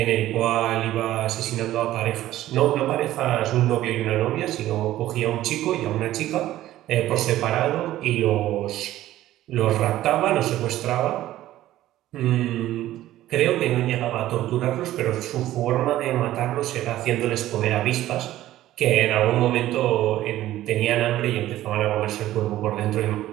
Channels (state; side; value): quieter; left; 14.3 dB